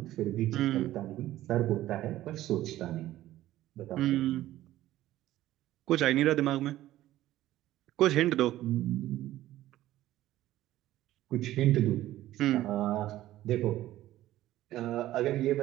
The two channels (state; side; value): quieter; left; 14.6 dB